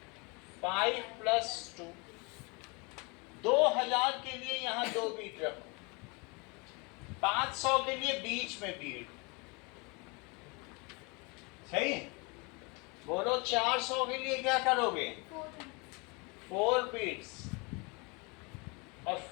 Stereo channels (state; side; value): quieter; right; 29.4 dB